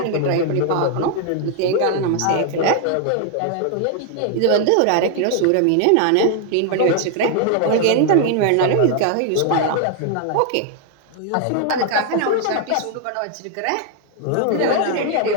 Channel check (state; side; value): different; both; correlation 0.00